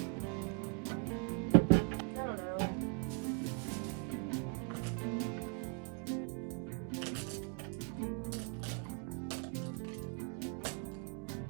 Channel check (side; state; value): left; quieter; 36.5 dB